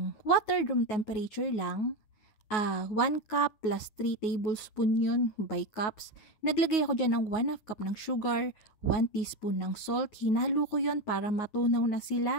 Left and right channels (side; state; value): right; late; 9.4 ms